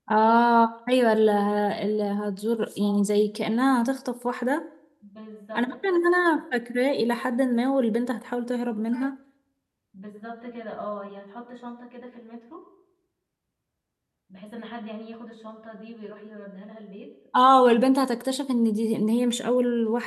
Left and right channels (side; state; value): both; identical; correlation 1.00